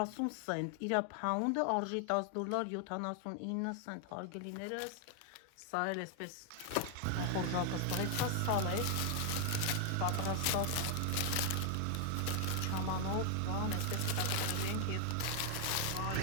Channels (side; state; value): both; different; correlation 0.00